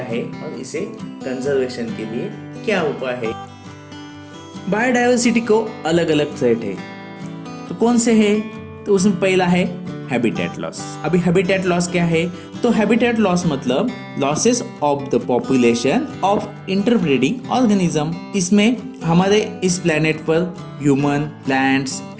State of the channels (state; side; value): identical; both; correlation 1.00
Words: है और इसे कंजर्वेशन के लिए क्या उपाय है। बायोडाइवर्सिटी को अलग अलग थ्रेट है, तो कौन से है? तो उसमें पहला है हैबिटेट लॉस। अभी हैबिटेट लॉस क्या है? तो हैबिटेट लॉस मतलब losses of the population of interbreeding organism. इसमें हमारे इस प्लेनेट पर human, plants,